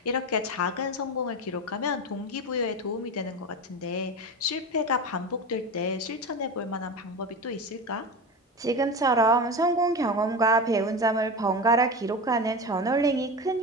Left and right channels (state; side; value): normal; both; correlation 0.25